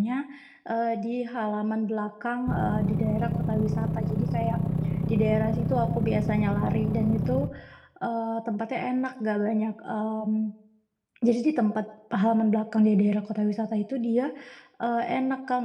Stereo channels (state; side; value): identical; both; correlation 1.00